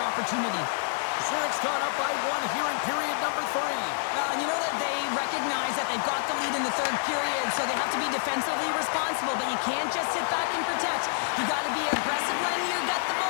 opportunity. Zurich's gone up by 1 here in period number 3. Well, you know that they recognize that they've got the lead in the third period, so they have to be defensively responsible, but you can't just sit back and protect. You got to be aggressive when you get the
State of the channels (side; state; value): right; silent; 58 dB below the other